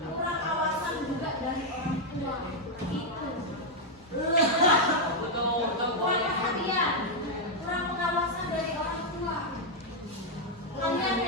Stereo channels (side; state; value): both; normal; correlation -0.01